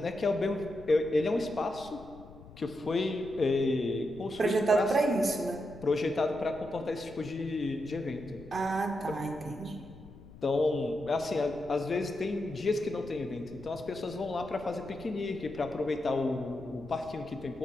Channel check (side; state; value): left; noise; rumble, 18 dB below the sound